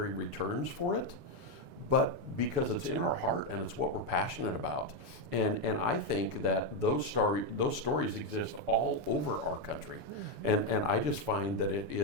returns for it, but because it's in our heart and it's what we're passionate about. And I think that those stories exist all over our country. And I just find that it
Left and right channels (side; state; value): left; late; 8.8 ms